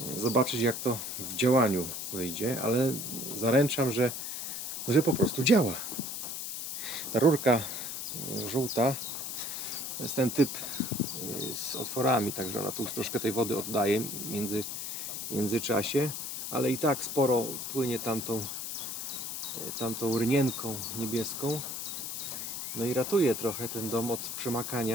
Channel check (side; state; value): left; noise; hiss, 5 dB below the sound